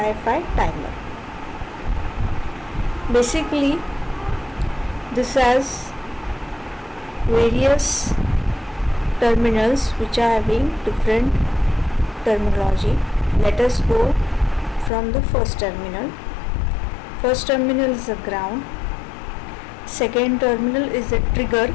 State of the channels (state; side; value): drops out; right; at 14.9 s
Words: timer. Basically, this has various terminals which are having different terminology. Let us go from the first terminal. First terminal is the ground. Second terminal is the trigger